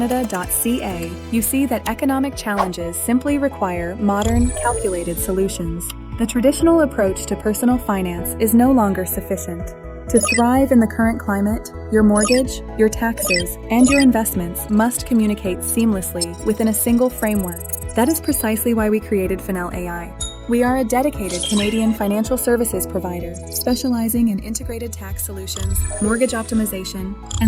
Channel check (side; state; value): both; identical; correlation 1.00